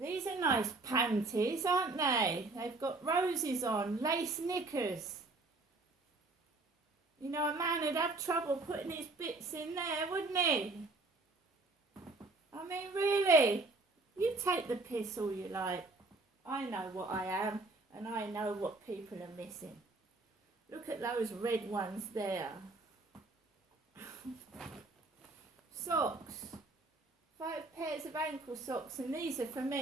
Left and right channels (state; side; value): quieter; left; 3.3 dB